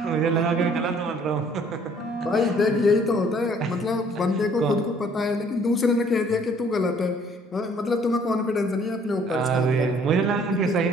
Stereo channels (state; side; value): normal; both; correlation 0.59